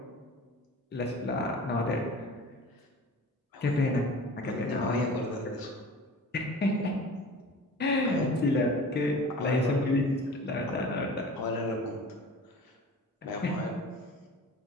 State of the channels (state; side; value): normal; both; correlation 0.40